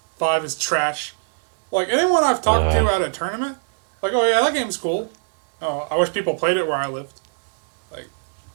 5 is trash. Like anyone I've talked to at a tournament, like, oh yeah, that game's cool. Oh, I wish people played it where I lived.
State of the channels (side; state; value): left; silent; digital silence